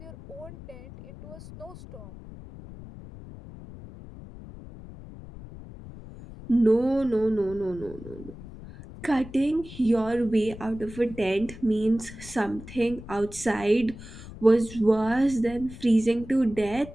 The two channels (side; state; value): left; noise; rumble, 15 dB below the sound